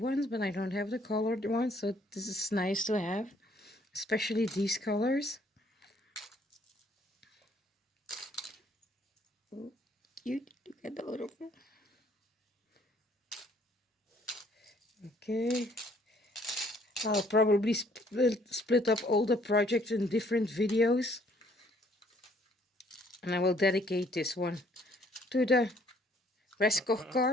but I don't have the colored ones, so this is nice to have, especially these colors. Oh, cute. Look at the little one. Okay, I'll probably split up all the projects in different videos, and I will dedicate this one to the Raskog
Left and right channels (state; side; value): normal; both; correlation 0.63